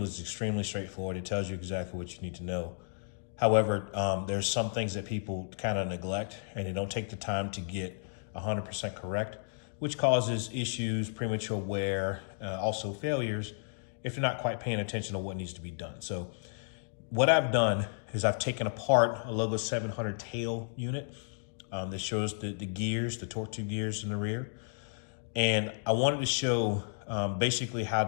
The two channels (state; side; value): silent; right; digital silence